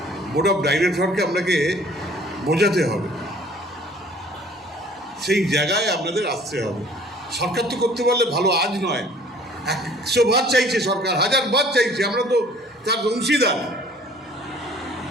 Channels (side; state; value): both; normal; correlation 0.53